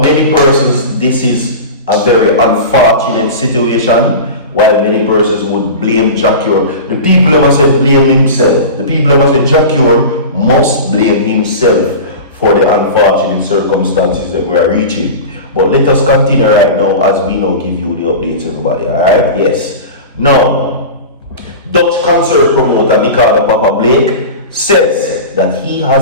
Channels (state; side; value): inverted; both; correlation -0.30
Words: many persons, this is a very unfortunate situation. While many persons would blame Jacure, the people who must say blame himself. The people who must say Jacure must blame himself for the unfortunate circumstances that we are reaching. But let us continue right now as we now give you the updates, everybody. Alright? Yes. Now, Dutch concert promoter Nicardo Papa Blake says that he